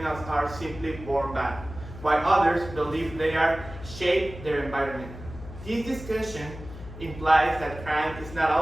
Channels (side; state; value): left; noise; hum, 13 dB below the sound